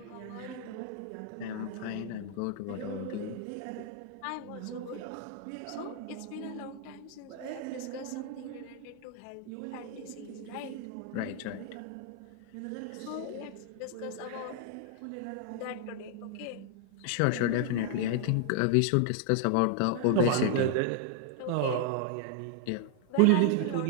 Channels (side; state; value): both; different; correlation 0.00